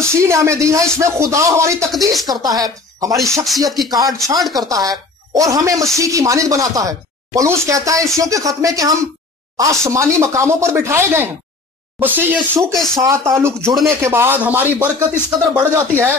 نے ہمیں دی ہے اس میں خدا ہماری تقدیس کرتا ہے, ہماری شخصیت کی کاٹ چھانٹ کرتا ہے اور ہمیں مسیح کی مانند بناتا ہے. پولس کہتا ہے افسیوں کے خط میں کہ ہم آسمانی مقاموں پر بٹھائے گئے ہیں. مسیح یسوع کے ساتھ تعلق جڑنے کے بعد ہماری برکت اس قدر بڑھ جاتی ہے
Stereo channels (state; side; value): quieter; right; 3.6 dB